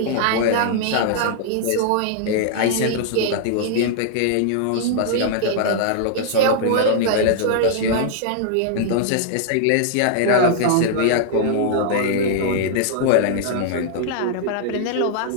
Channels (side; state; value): both; different; correlation -0.01